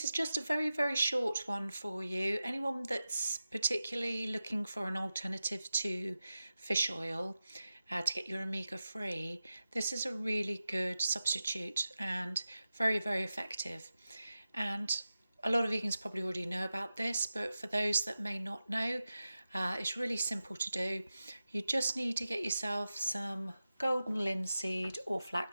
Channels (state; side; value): inverted; both; correlation -0.93